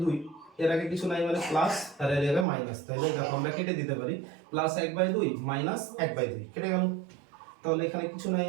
এর আগে কিছু নাই মানে প্লাস, আর এর আগে মাইনাস, তাহলে দেখো আমরা কেটে দিতে পারি, প্লাস 1/2 মাইনাস 1/2 কেটে গেল। তাহলে এখানে কিছু নাই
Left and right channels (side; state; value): left; drops out; at 2.5 s